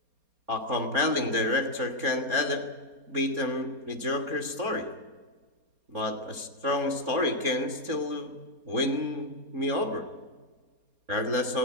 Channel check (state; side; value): late; left; 4.3 ms